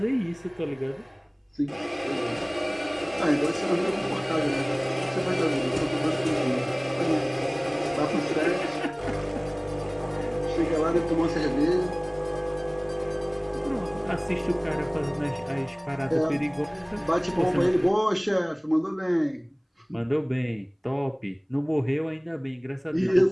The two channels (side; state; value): both; identical; correlation 1.00